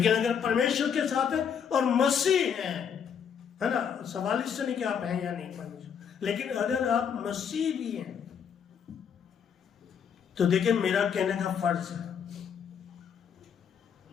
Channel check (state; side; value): quieter; right; 7.5 dB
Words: अगर परमेश्वर के साथ है और मसीह है ना, सवाल इससे नहीं कि आप हैं या नहीं परमेश्वर, लेकिन अगर आप मसीह भी हैं तो देखिए, मेरा कहने का फर्ज है